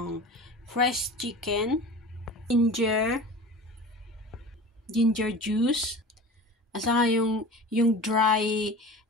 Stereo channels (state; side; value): normal; both; correlation 0.36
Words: fresh chicken, ginger juice, at saka yung dry